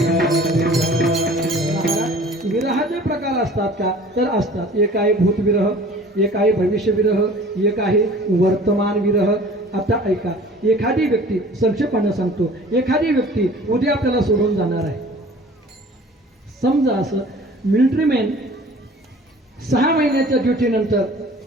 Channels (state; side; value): normal; both; correlation 0.47